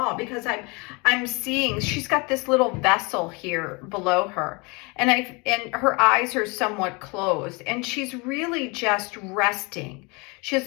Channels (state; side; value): quieter; right; 28.7 dB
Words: because I'm seeing she's got this little vessel here below her, and her eyes are somewhat closed, and she's really just resting. She